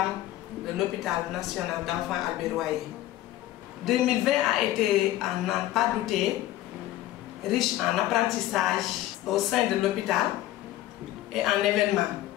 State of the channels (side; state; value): right; quieter; 14.6 dB